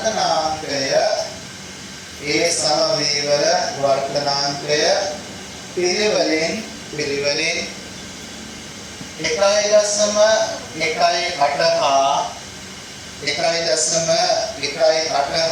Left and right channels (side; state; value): both; identical; correlation 1.00